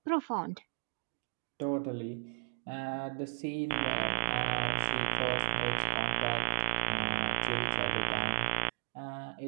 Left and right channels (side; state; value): left; silent; digital silence